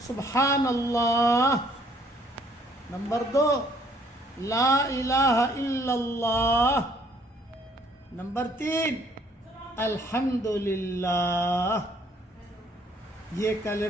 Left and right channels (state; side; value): normal; both; correlation 0.62